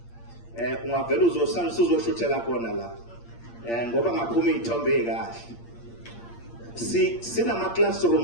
ungavela uzosalisa uzoshuthela khona la ngoba ngaphuma izithombe ezikahle. Sinama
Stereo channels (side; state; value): right; late; 8.6 ms